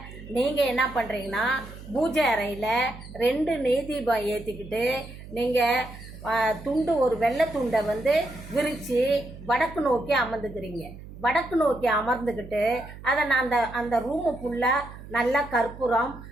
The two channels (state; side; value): noise; right; hum, 15 dB below the sound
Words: நீங்கள் என்ன பண்ணுறீங்கன்னா, பூஜை அறையில் 2 நெய் தீபம் ஏற்றிக்கிட்டு நீங்கள் துண்டு, ஒரு வெள்ளை துண்டை விரித்து வடக்கு நோக்கி அமர்ந்துக்கிறீங்க. வடக்கு நோக்கி அமர்ந்துக்கிட்டு அதை நான் அந்த ரூமு ஃபுல்லாக நல்லா கற்பூரம்